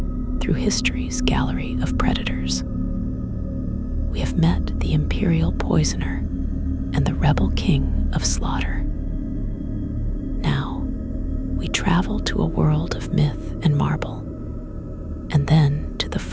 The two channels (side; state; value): both; identical; correlation 1.00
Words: through history's gallery of predators. We have met the imperial poisoner and the rebel king of slaughter. Now, we travel to a world of myth and marble, and then to the